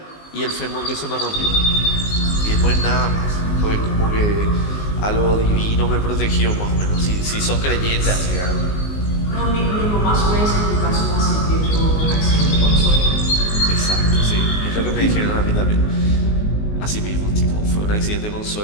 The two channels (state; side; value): late; right; 19 ms